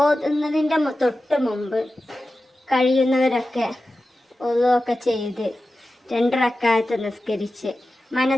തൊട്ട് മുമ്പ് കഴിയുന്നവരൊക്കെ ഓതുകയൊക്കെ ചെയ്ത് 2 റക്അത്ത് നിസ്കരിച്ച്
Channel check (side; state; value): both; normal; correlation 0.94